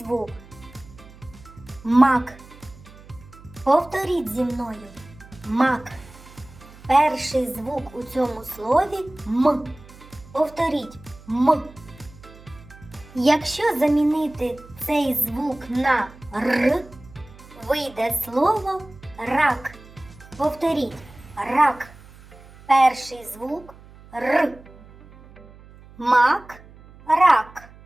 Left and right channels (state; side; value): noise; right; hum, 21 dB below the sound